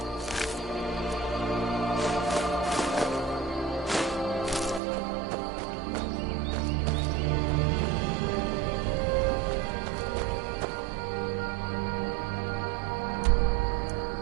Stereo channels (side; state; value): left; drops out; at 4.8 s